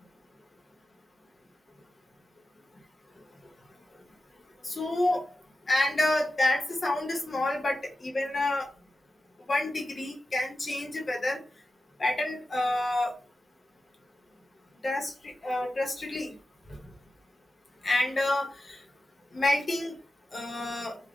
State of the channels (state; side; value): normal; both; correlation 0.92